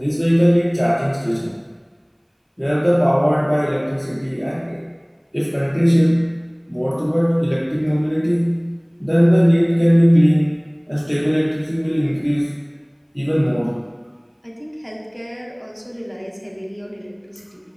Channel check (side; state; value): both; identical; correlation 1.00